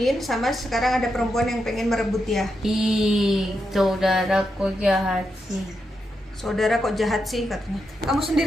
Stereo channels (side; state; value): both; normal; correlation 0.85